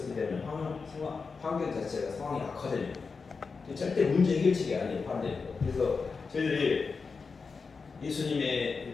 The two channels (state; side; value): quieter; right; 4.8 dB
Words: 때문에 환경 자체가 상황이 악화됩니다. 절대 문제 해결책이 아니에요. 반대로. 그래서 저희들이 예수님의